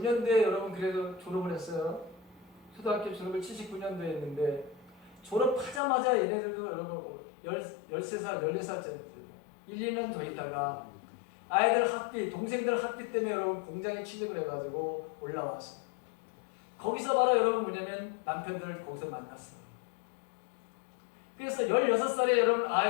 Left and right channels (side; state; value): right; drops out; at 5.8 s